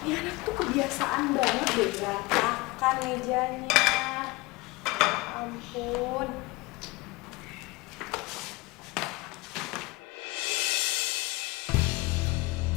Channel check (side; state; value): right; quieter; 23.4 dB